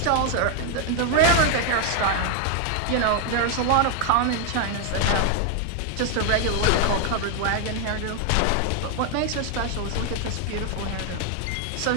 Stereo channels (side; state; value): both; different; correlation 0.00